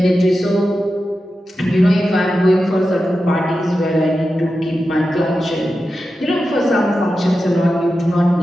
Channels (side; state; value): both; normal; correlation 0.91